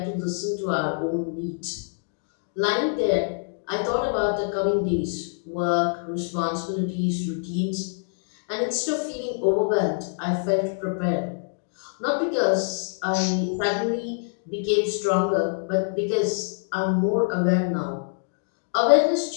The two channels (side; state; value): right; silent; digital silence